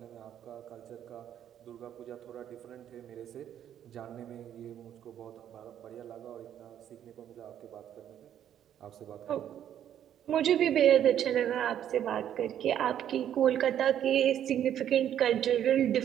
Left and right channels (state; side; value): quieter; left; 10.3 dB